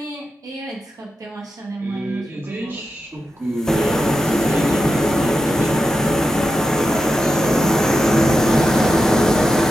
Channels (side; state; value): both; normal; correlation 0.88